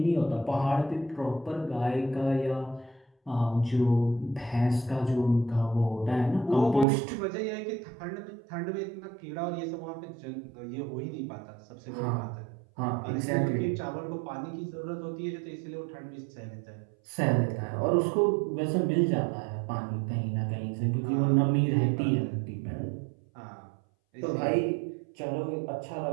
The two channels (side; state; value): left; drops out; at 6.9 s